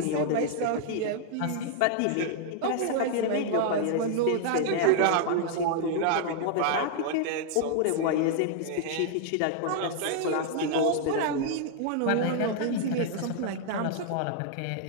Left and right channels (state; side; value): different; both; correlation -0.01